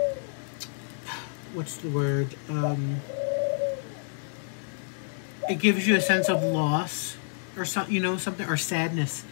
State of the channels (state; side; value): silent; right; digital silence